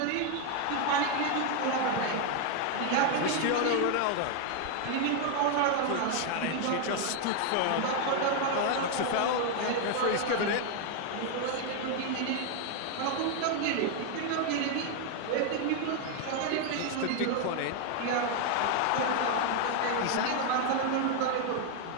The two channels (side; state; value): both; different; correlation 0.00